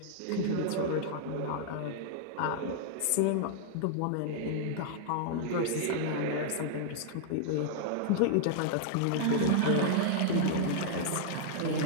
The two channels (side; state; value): both; different; correlation -0.01